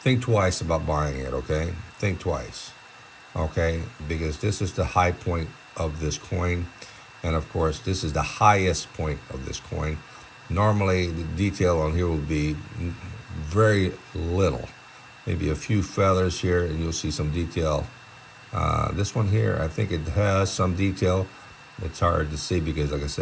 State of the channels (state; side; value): identical; both; correlation 1.00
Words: think twice about buying it, okay? Think twice, okay? Because this is the high point of this coin. And of course, this is the highest point of this coin. Normally, the detail on here will be very little. Maybe a few feathers here and you'll see some detail. This one here, I think it has some detail. It's hard to see because, like I